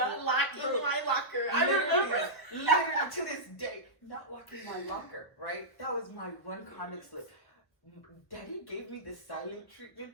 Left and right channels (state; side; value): late; right; 1.1 ms